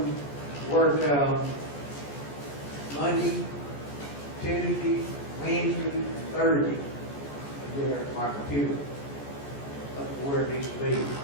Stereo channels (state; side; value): late; right; 14 ms